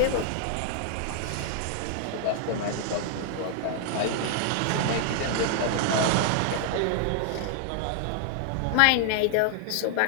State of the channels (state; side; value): different; both; correlation 0.00